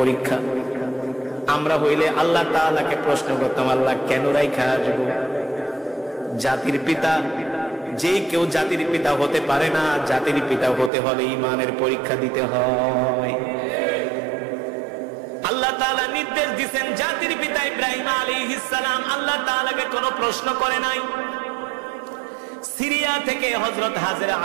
আমরা হইলে আল্লাহ তাআলাকে প্রশ্ন করতাম, আল্লাহ কেন রাইখা আসবো? জাতির পিতা, যে কেউ জাতির পিতা হতে পারে না, জাতির পিতা হতে হলে ঈমানের পরীক্ষা দিতে হয়। আল্লাহ তাআলা নির্দেশ দিয়েছেন, জাতির পিতা ইব্রাহিম আলাইহিস সালাম আল্লাহ তাআলাকে কোনো প্রশ্ন করে নাই। সিরিয়া থেকে হযরত হাজেরা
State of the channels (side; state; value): left; drops out; at 10.9 s